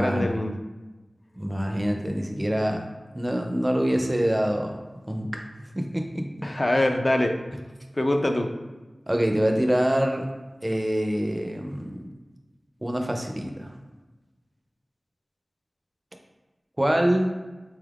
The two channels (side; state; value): both; normal; correlation 0.98